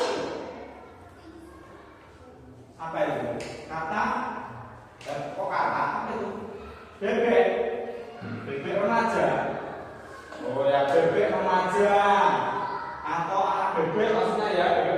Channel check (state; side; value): identical; both; correlation 1.00